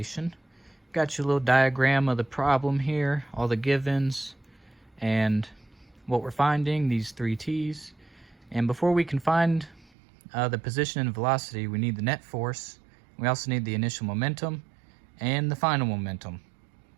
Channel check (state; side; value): drops out; left; at 9.9 s